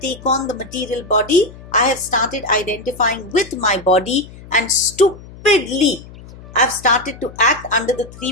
on the material body, I have started identifying with my body and stupidly I've started to act under the 3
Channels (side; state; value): left; noise; hum, 18 dB below the sound